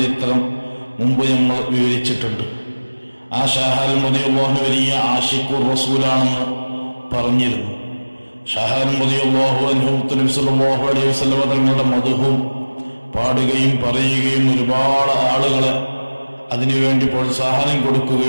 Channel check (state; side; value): inverted; both; correlation -1.00